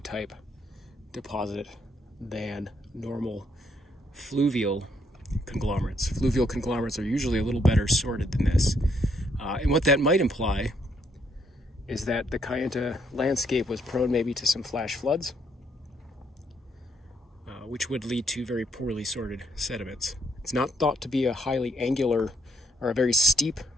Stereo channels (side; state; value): both; normal; correlation 0.72